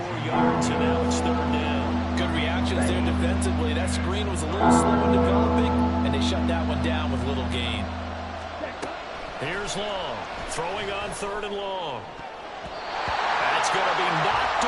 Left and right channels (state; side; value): identical; both; correlation 1.00